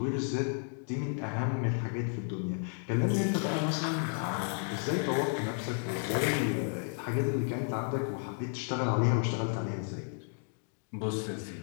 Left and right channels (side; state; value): right; silent; 56 dB below the other